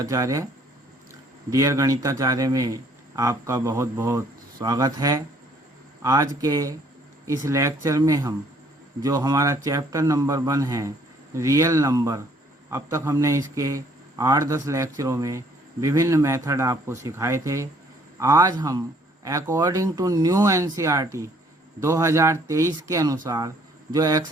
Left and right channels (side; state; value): both; normal; correlation 0.62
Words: Dear Ganitacharya में आपका बहुत बहुत स्वागत है। आज के इस लेक्चर में हम जो हमारा चैप्टर नंबर 1 है रियल नंबर, अब तक हमने इसके 8-10 लेक्चरों में विभिन्न मेथड आपको सिखाए थे। आज हम अकॉर्डिंग टू न्यू एनसीईआरटी 2023 के अनुसार जो